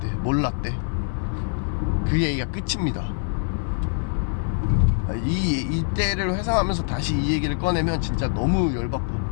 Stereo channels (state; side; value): silent; right; 62 dB below the other